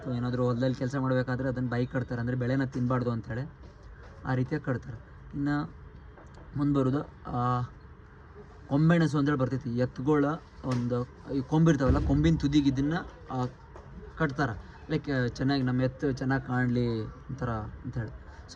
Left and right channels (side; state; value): both; identical; correlation 1.00